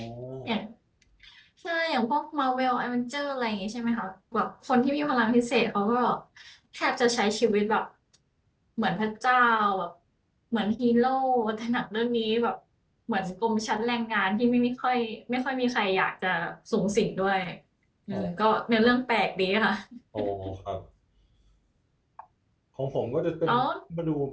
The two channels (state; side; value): identical; both; correlation 1.00